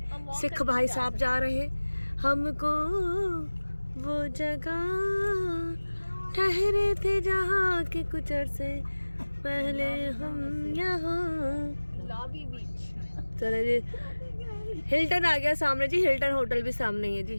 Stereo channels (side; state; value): both; inverted; correlation -1.00